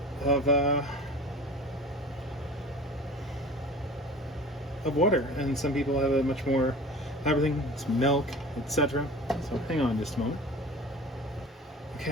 water, and some people have a much more everything. It's milk, etc. So hang on just a moment.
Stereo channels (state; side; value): normal; both; correlation 0.39